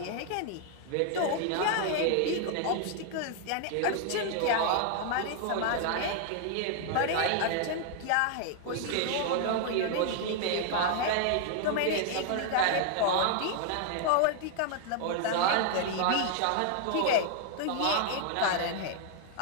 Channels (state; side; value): different; both; correlation 0.00